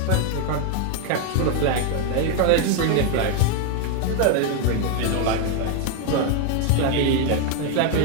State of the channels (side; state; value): both; different; correlation 0.01